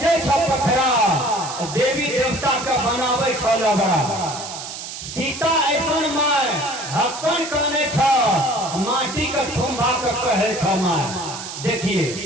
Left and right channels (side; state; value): right; noise; hiss, 9 dB below the sound